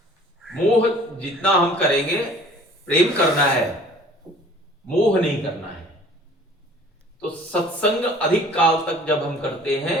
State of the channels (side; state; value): both; normal; correlation 0.50